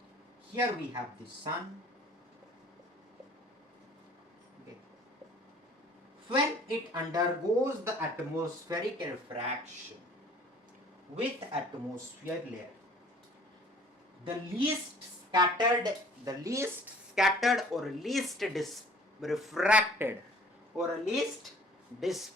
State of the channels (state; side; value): normal; both; correlation 0.51